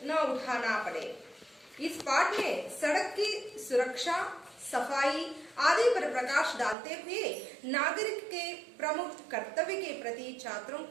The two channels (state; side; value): drops out; left; at 6.8 s